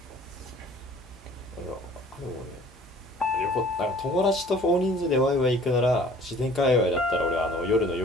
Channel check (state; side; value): normal; both; correlation 0.51